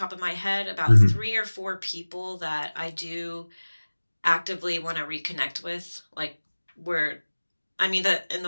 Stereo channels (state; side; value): inverted; both; correlation -1.00